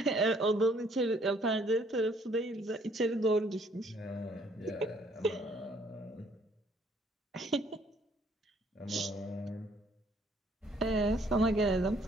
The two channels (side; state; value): both; normal; correlation 0.63